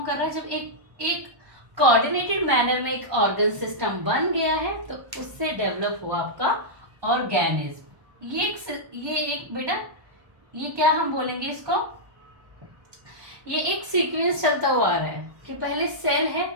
कर रहा है, जब एक एक कोऑर्डिनेटेड मैनर में एक ऑर्गन सिस्टम बन गया है तो उससे डेवलप हुआ आपका ऑर्गेनिज्म। ये एक बेटा, ये क्या हम बोलेंगे इसको, ये एक सीक्वेंस चलता हुआ आ रहा है कि पहले सेल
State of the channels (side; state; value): left; late; 1.1 ms